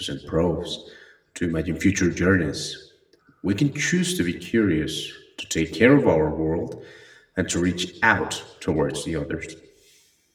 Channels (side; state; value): both; identical; correlation 1.00